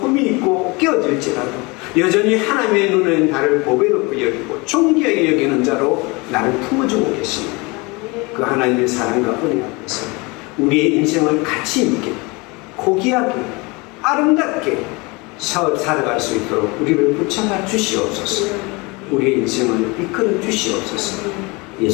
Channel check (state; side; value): quieter; right; 26.3 dB